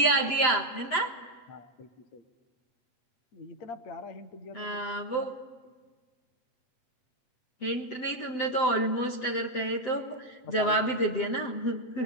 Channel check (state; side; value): late; right; 7.8 ms